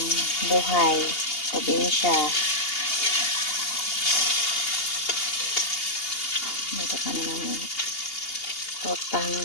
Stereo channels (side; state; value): right; late; 2.8 ms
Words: buhay, probinsya. Luto kami ng totang